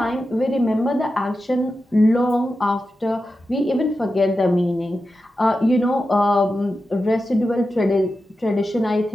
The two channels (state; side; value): normal; both; correlation 0.91